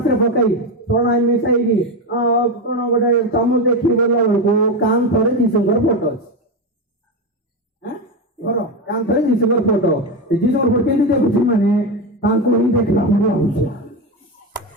रे पकाई थोड़ा मिसाई की कोन गोटे चामच देखि बोला को कान थरे जीसुंगर फोटो घर कान थरे जीसुंगर फोटो जीसुंगर फोटो केंदी देखुछि माने तांको ही देखला हमरा होछ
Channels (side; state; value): both; normal; correlation 0.14